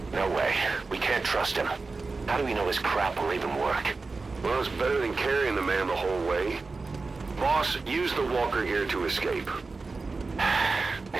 No way. We can't trust him. How do we know his crap will even work? Well, it's better than carrying the man the whole way. Boss, use the walker gear to escape.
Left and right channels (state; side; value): quieter; left; 3.9 dB